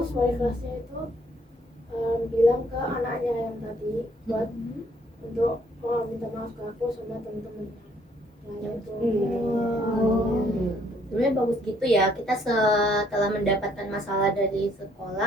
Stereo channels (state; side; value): normal; both; correlation 0.65